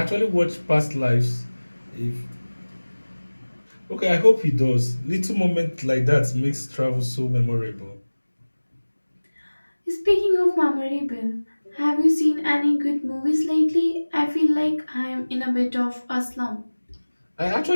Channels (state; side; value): inverted; both; correlation -1.00